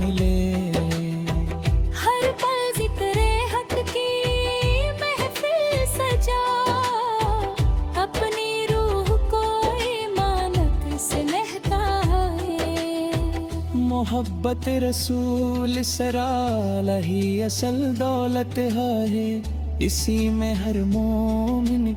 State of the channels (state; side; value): identical; both; correlation 1.00